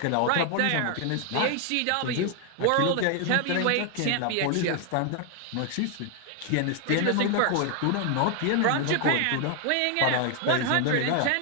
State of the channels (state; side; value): different; both; correlation 0.00